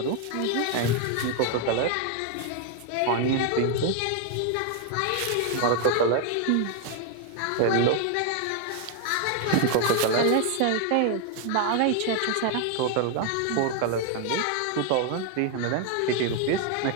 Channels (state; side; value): different; both; correlation 0.01